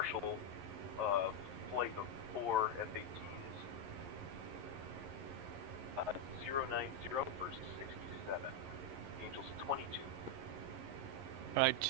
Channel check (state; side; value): late; left; 11 ms